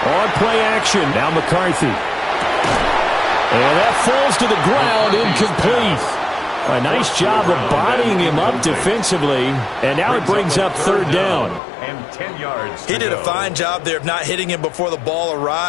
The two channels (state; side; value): drops out; right; at 11.6 s